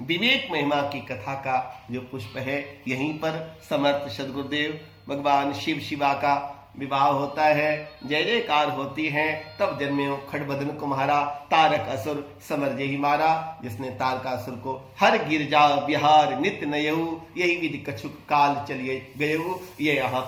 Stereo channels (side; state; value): both; identical; correlation 1.00